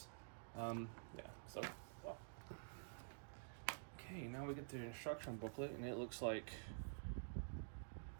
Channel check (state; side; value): silent; left; digital silence